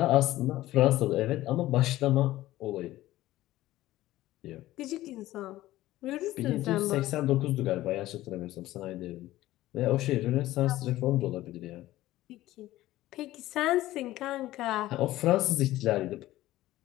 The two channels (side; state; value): right; quieter; 15.9 dB